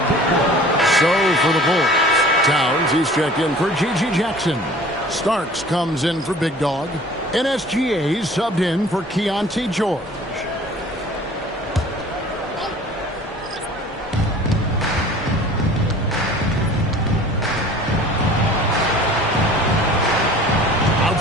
So for the Bulls. Towns, he's checked in for G.G. Jackson. Starks comes in for Big Dog. NSGA subbed in for Keontae George.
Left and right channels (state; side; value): normal; both; correlation 0.47